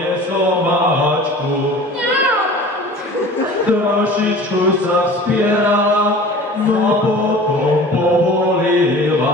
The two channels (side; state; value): both; normal; correlation 0.42